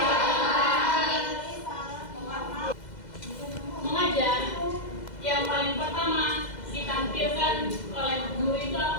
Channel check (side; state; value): right; late; 2.0 ms